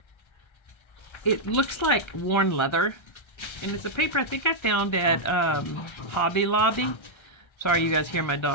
It looks like worn leather. And it's a paper I think I found at Hobby Lobby. Sorry you guys hear my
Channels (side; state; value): right; late; 1.3 ms